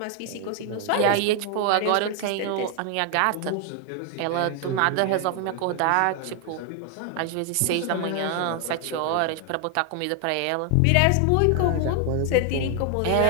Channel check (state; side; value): different; both; correlation 0.00